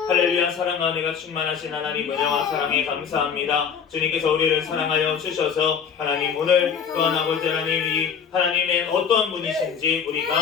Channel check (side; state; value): right; quieter; 7.0 dB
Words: 할렐루야. 사랑과 은혜가 충만하신 하나님, 은혜와 사랑에 감사합니다. 주님께서 우리를 사랑하여 주셔서 하나님, 오늘 또한 아버지 하나님, 이 하나님의 어떠한 분이신지 우리가